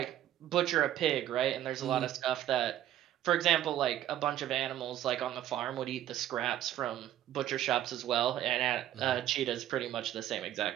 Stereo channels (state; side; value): quieter; left; 12.1 dB